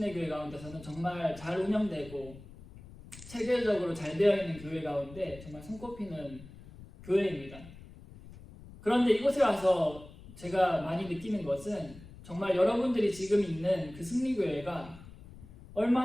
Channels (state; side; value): noise; left; rumble, 18 dB below the sound